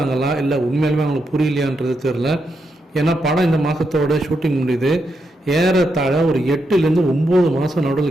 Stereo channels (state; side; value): normal; both; correlation 0.83